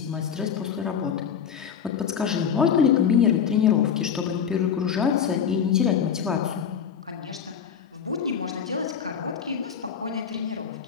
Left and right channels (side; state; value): right; quieter; 7.6 dB